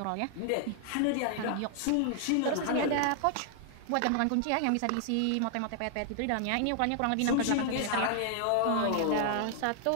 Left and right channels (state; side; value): different; both; correlation 0.00